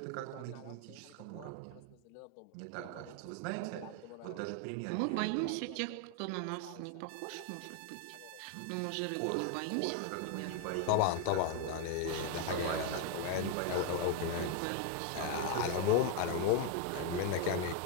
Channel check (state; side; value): different; both; correlation 0.01